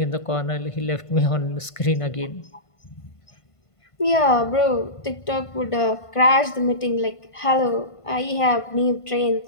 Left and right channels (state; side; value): late; right; 1.5 ms